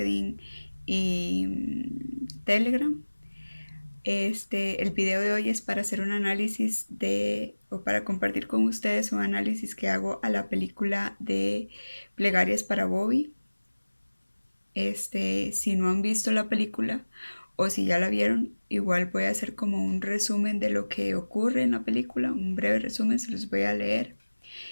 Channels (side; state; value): both; inverted; correlation -1.00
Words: y Telegram. El video de hoy es para hacer un análisis o para compartir con ustedes un análisis que hago a la película de Plegarias para Bobby. Si no han visto la película o si ya la vieron, igual voy a hacer como un resumen de lo que ocurre en la película, un breve resumen, se los voy a leer.